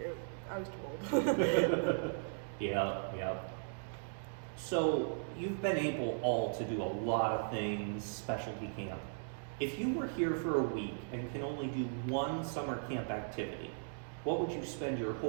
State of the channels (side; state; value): left; silent; digital silence